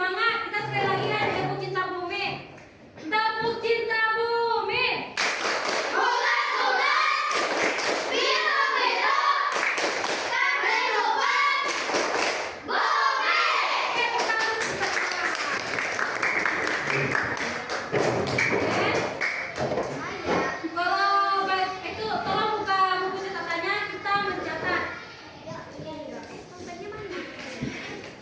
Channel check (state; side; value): identical; both; correlation 1.00